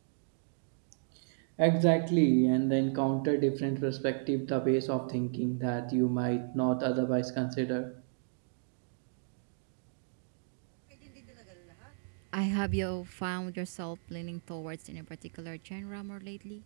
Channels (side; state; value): left; silent; digital silence